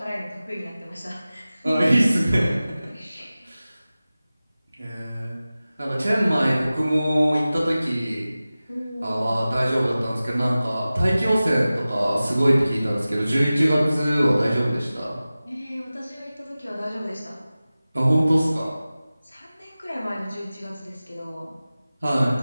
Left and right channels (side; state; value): both; inverted; correlation -0.96